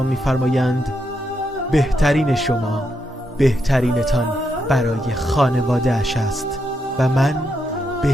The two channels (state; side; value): normal; both; correlation 0.81